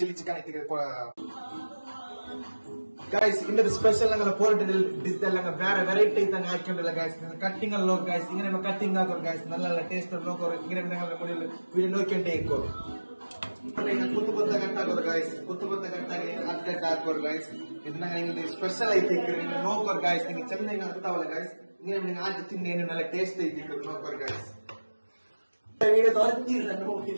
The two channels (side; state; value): both; inverted; correlation -1.00